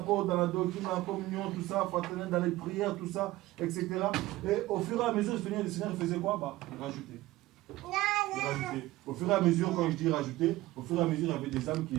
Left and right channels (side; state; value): left; quieter; 17.6 dB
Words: dans la doctrine, dans la communion, tout ça, fraternel, dans les prières, tout ça, etc. Et au fur et à mesure, le Seigneur faisait quoi? Il rajoutait. Au fur et à mesure, quand je dis rajouter, au fur et à mesure, il y avait des âmes qui